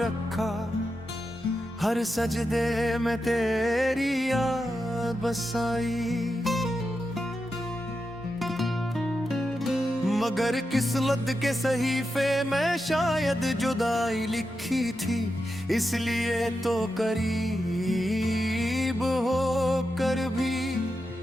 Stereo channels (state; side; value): normal; both; correlation 0.88